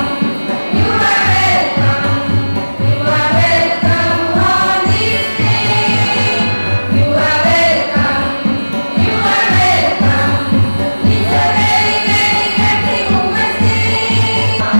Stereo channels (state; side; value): inverted; both; correlation -1.00